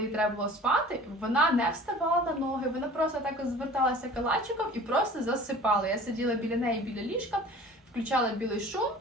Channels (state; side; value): normal; both; correlation 0.45